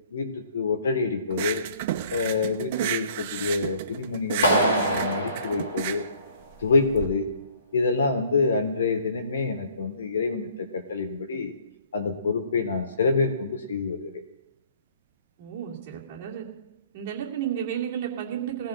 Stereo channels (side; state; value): both; inverted; correlation -0.57